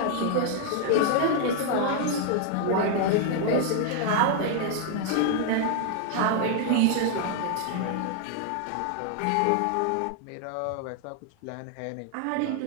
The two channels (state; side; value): different; both; correlation 0.00